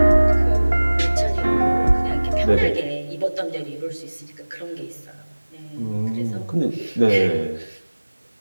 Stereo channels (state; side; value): inverted; both; correlation -1.00